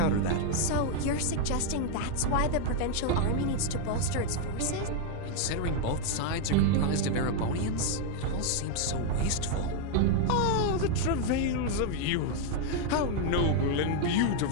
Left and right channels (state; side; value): different; both; correlation 0.00